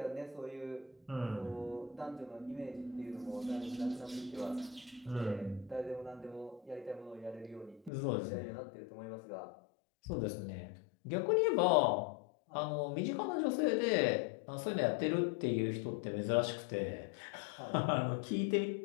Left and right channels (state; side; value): drops out; right; at 7.9 s